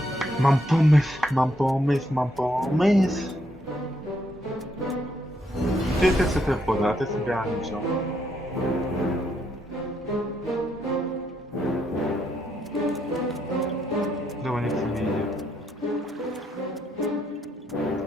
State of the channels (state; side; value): normal; both; correlation 0.75